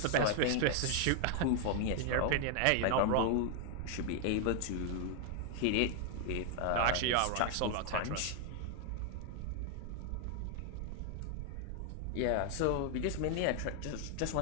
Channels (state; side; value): different; both; correlation 0.00